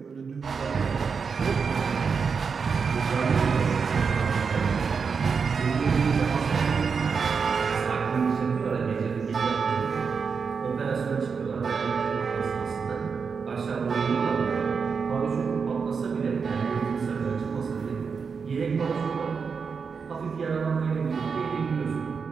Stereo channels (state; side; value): quieter; left; 5.6 dB